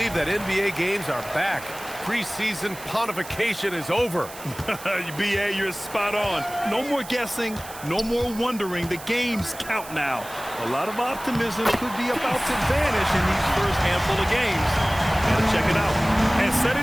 that NBA games are back. Preseason pontification is over. BA, you're spot on. No more guessing, no more wondering. The games count now. A lot of optimism could be about to vanish in these first handful of games. Gotta check it out. And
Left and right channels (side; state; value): right; noise; hiss, 15 dB below the sound